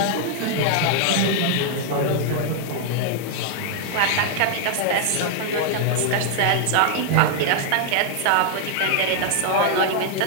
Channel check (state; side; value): different; both; correlation 0.00